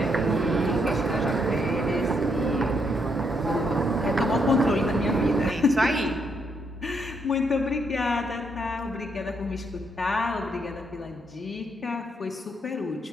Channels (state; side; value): normal; both; correlation 0.76